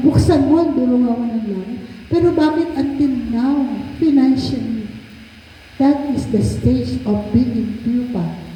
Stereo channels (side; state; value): both; identical; correlation 1.00